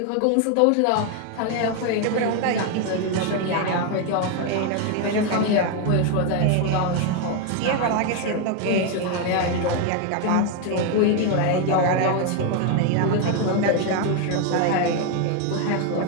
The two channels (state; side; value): different; both; correlation 0.01